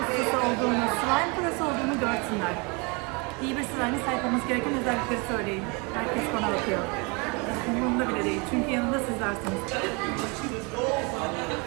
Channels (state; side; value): quieter; left; 30.2 dB